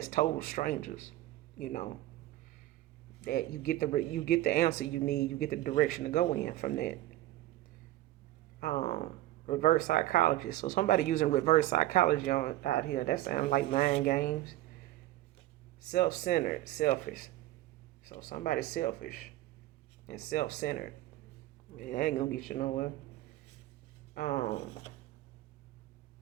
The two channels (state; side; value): quieter; left; 15.6 dB